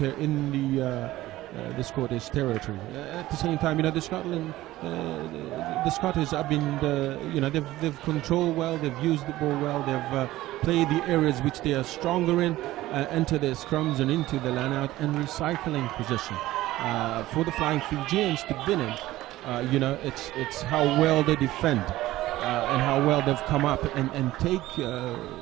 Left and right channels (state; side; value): quieter; left; 16.4 dB